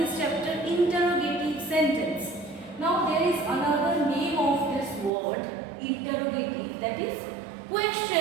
chapter, interrogative sentence. Now there is another name of this word, interrogative, that is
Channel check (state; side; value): drops out; left; at 5.1 s